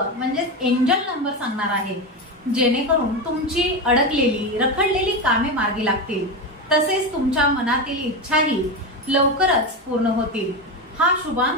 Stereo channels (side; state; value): both; normal; correlation 0.16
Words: म्हणजे एंजल नंबर सांगणार आहे, जेणेकरून तुमची अडकलेली रखडलेली कामे मार्गी लागतील, तसेच तुमच्या मनातील इच्छाही लवकरच पूर्ण होतील। हा